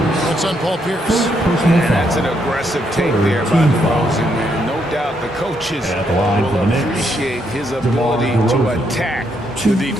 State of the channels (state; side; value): normal; both; correlation 0.76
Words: That's on Paul Pierce. And that's an aggressive take there by DeRozan, man. No doubt the coaches will appreciate his ability to attack the